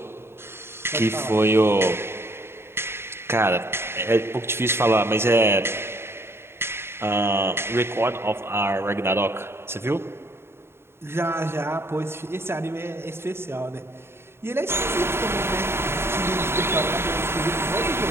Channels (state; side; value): late; left; 0.12 ms